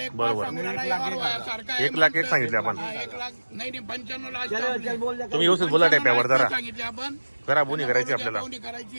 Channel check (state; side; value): inverted; both; correlation -1.00